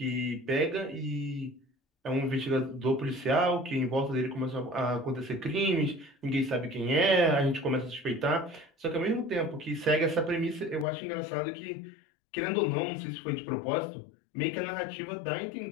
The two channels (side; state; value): right; drops out; at 10.9 s